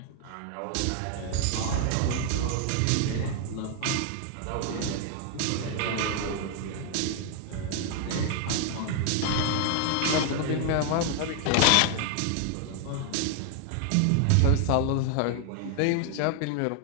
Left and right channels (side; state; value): both; different; correlation 0.00